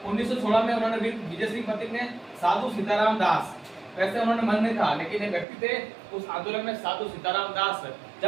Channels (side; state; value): left; drops out; at 5.5 s